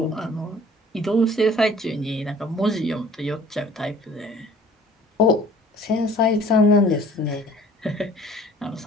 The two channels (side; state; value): both; normal; correlation 0.50